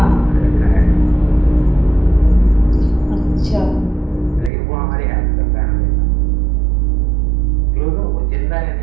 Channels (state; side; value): drops out; left; at 4.5 s